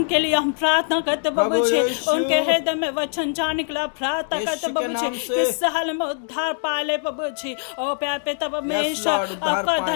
लिए हम प्रार्थना करते प्रभु जी। उनके हृदय में वचन जाने के लिए प्रार्थना करते प्रभु जी, किस हाल में उद्धार पाले प्रभु जी। ओ प्यारे पिता परमेश्वर, आपका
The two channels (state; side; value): silent; right; digital silence